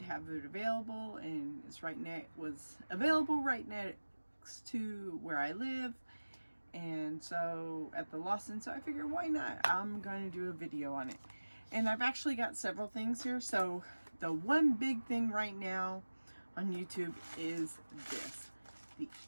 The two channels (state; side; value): inverted; both; correlation -1.00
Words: have it available, and was available right next to where I live, and so at the Lawson. So I figured why not? I'm going to do a video on it, and I've actually got several things here. So the one big thing right now on YouTube is this, the